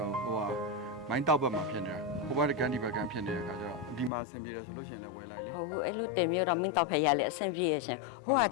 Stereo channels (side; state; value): right; drops out; at 4.1 s